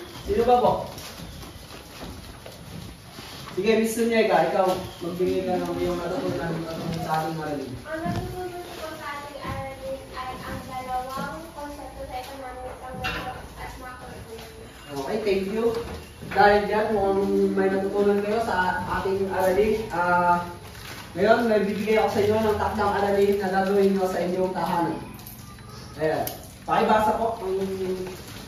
Sino pa po? Sige, Miss Sunyega, ikaw, magbigay ka ng iyong natutunan sa ating aralin. Ang natutunan ko sa ating aralin ay ang dalawang konsepto sa economics, ang micro at macroeconomics. Okay, thank you. Dahil dyan, mukhang may natutunan kayo sa ating aralin. Ngayon, may bibigay ako sa inyo ng takdang aralin na gagawin nyo sa inyong tahanan. Ayan. Pakibasa po ang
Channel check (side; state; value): both; identical; correlation 1.00